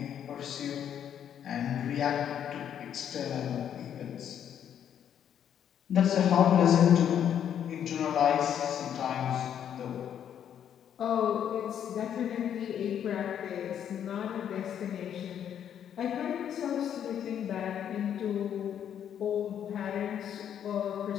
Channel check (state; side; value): quieter; right; 9.3 dB